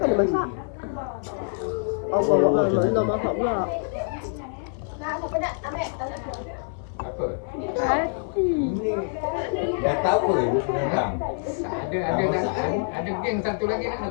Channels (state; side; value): silent; right; 56 dB below the other